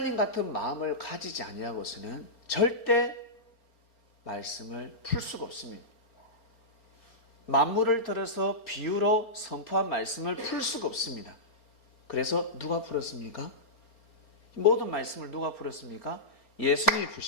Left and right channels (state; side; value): late; right; 4.3 ms